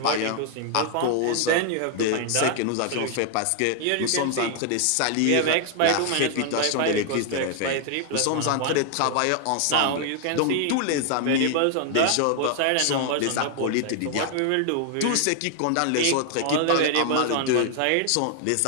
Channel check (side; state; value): both; different; correlation 0.00